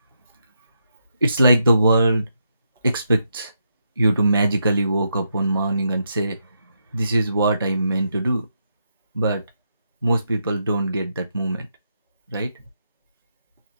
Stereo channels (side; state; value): both; inverted; correlation -0.81